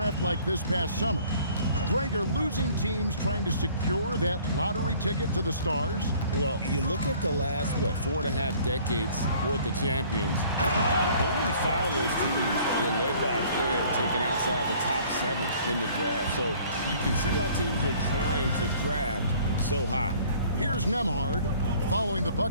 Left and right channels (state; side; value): inverted; both; correlation -0.54